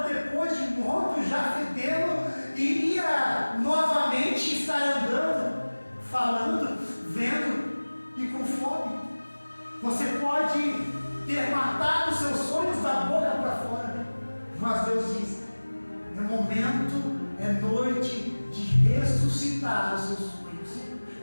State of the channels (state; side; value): inverted; both; correlation -1.00